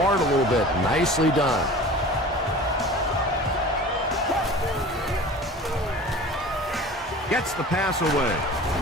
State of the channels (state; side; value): normal; both; correlation 0.39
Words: a little bit. Nicely done. Gets the pass away.